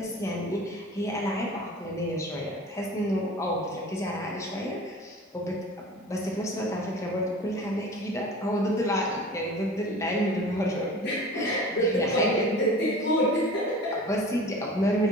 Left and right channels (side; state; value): both; normal; correlation 0.40